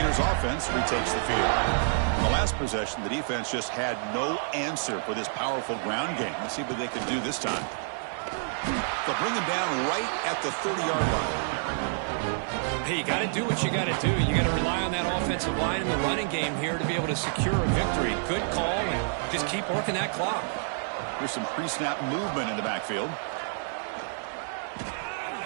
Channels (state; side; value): silent; left; 59 dB below the other